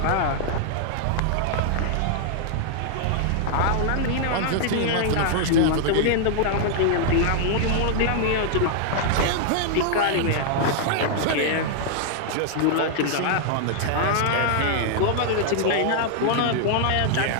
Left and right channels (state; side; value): different; both; correlation 0.00